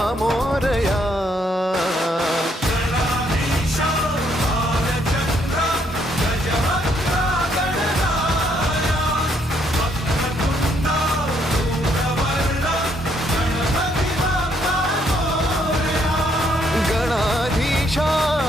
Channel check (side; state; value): both; normal; correlation 0.71